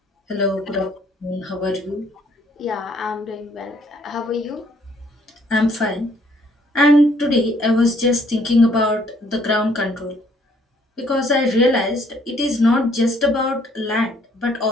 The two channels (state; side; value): normal; both; correlation 0.64